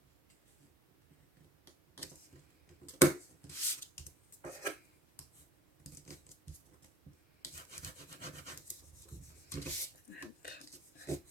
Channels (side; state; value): both; normal; correlation 0.49